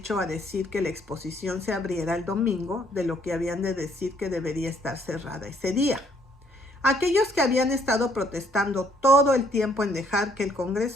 a decir que la exposición se abriera el domingo de lo que habían de decir que debería estar cerrada ese día. Aquellos que habían estado protestando todo el tiempo en dejar que el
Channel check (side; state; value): both; normal; correlation 0.66